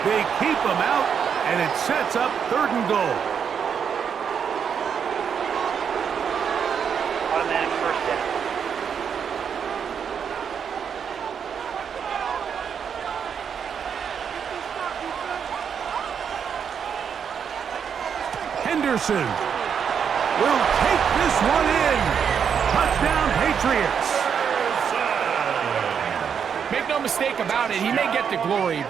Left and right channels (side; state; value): left; quieter; 7.3 dB